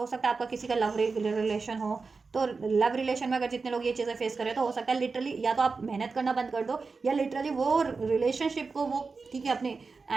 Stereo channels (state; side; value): quieter; left; 4.4 dB